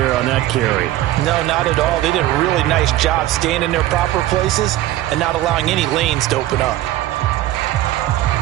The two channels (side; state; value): left; quieter; 14.8 dB